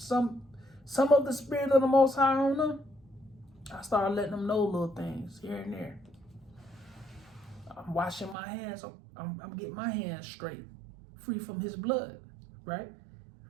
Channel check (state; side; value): drops out; left; at 8.3 s